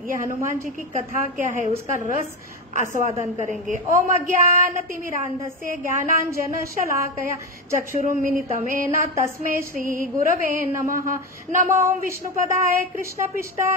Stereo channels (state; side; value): normal; both; correlation 0.16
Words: ये हनुमान जी की कथा क्या है, उसका रस आस्वादन करेंगे। ओम अज्ञानतिमिरान्धस्य ज्ञानांजन शलाकया चक्षुरुन्मिलितमेन तस्मै श्री गुरवे नमः। नमो विष्णुपदाय